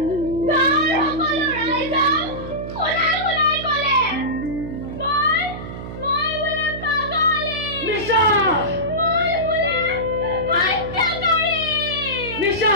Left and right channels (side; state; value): right; noise; hum, 9 dB below the sound